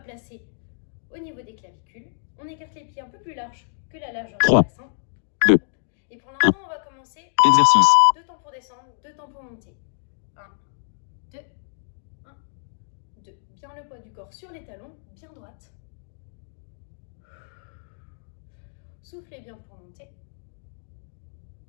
placer au niveau des clavicules. On écarte les pieds un peu plus larges que la largeur du 3, bassin. 2, Et pour l'instant, on va commencer. exercice. 2 temps pour descendre, 2 temps pour monter. 1, 2, 1, 2. Bien le poids du corps sur les talons, bien droite. Soufflez bien pour monter.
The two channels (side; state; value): right; silent; digital silence